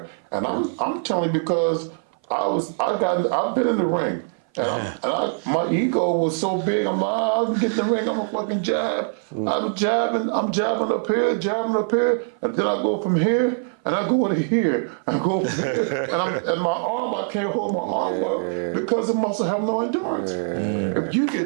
and I'm telling you because I've been in the ring. And my ego was so big. I'm like, I'll get in the ring. I'm a fucking jab. I'm jabbing up here, and then I go from here, and I go to here. I go from here, and my arm, I can't hold my arm up because the muscle have no endurance. If you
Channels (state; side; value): silent; left; 57 dB below the other